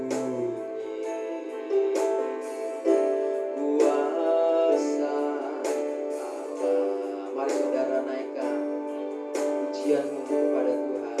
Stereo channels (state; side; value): identical; both; correlation 1.00